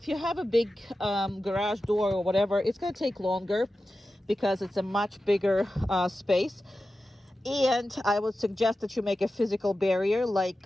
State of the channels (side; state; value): both; normal; correlation 0.93